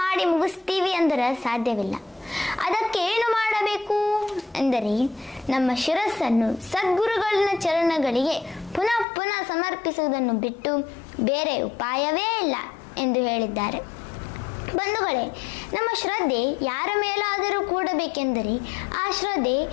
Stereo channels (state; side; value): drops out; right; at 9.1 s